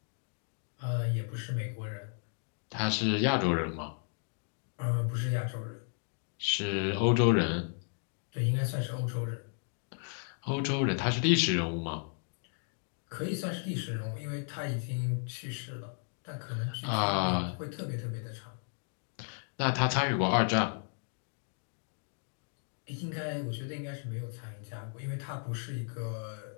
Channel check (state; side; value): silent; right; 55 dB below the other